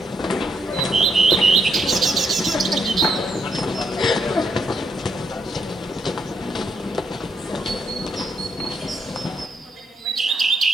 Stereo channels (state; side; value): normal; both; correlation 0.76